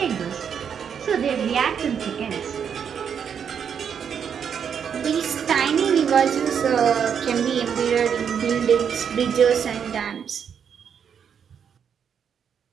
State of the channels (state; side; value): quieter; left; 7.6 dB